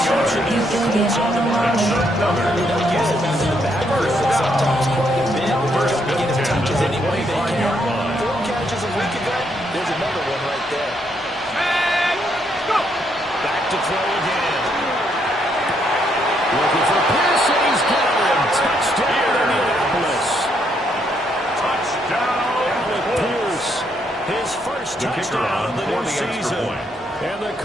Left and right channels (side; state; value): both; normal; correlation 0.74